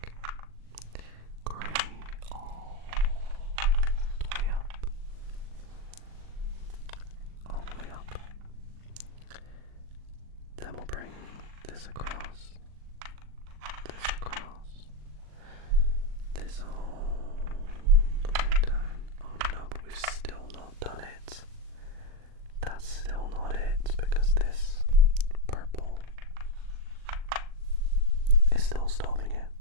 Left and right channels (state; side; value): late; left; 39 ms